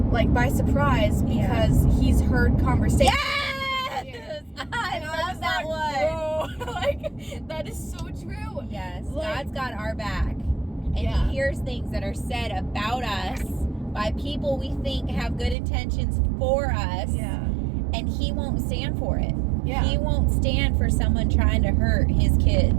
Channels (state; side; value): drops out; left; at 15.6 s